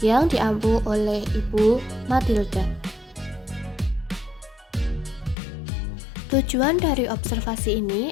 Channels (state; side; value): drops out; right; at 5.4 s